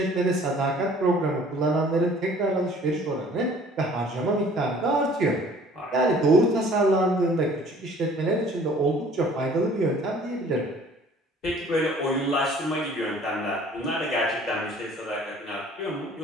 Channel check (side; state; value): both; normal; correlation 0.52